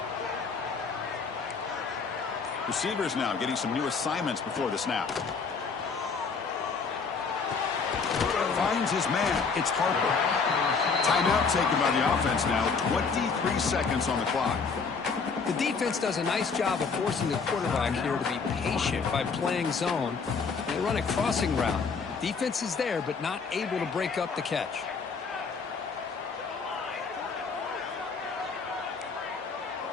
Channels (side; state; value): right; quieter; 5.1 dB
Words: Receivers now getting some new assignments before the snap. Finds his man. It's Harper. Timeout taken by the offense now. 23 seconds on the clock. The defense does a nice job of forcing the quarterback here to be patient by playing zone. They run a crossing route. Defense is there, but not able to break up the catch.